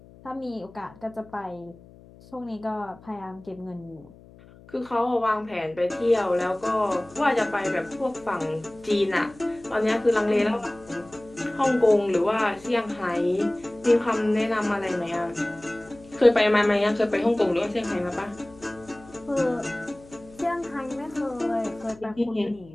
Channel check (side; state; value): left; noise; hum, 23 dB below the sound